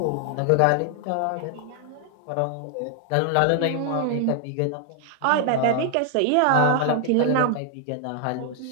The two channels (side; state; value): both; different; correlation 0.00